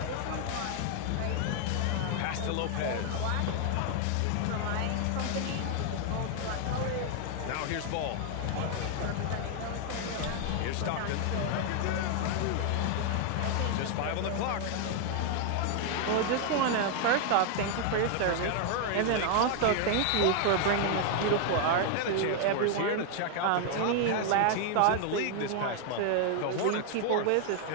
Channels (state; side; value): different; both; correlation 0.00